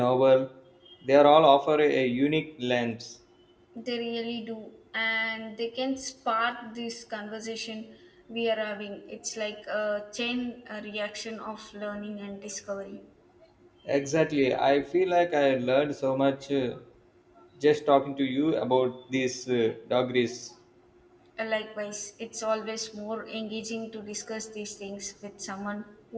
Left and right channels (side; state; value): both; identical; correlation 1.00